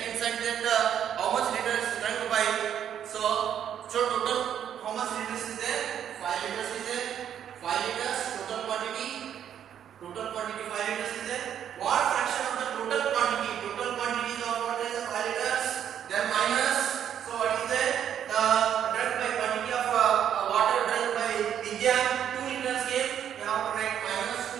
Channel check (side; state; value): left; quieter; 9.5 dB